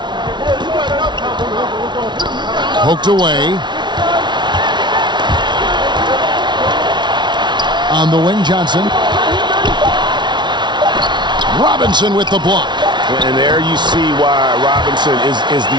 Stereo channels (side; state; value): left; late; 0.22 ms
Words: Poked away. On the wing, Johnson. Robinson with the block. And there you see why Robinson is